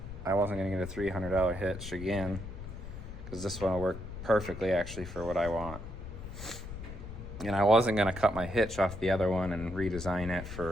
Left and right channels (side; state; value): left; noise; rumble, 10 dB below the sound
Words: I wasn't gonna get a $300 hitch again, because this one will work perfectly actually for what I want. And I wasn't gonna cut my hitch off the other one and redesign it